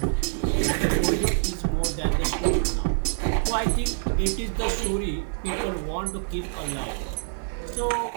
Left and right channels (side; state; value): left; silent; digital silence